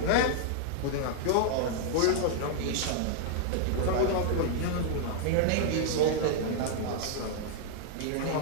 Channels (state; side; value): different; both; correlation -0.01